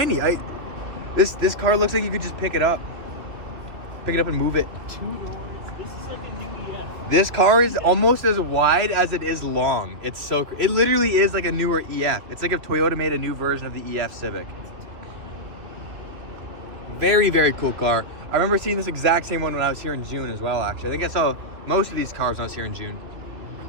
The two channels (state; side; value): late; left; 3.3 ms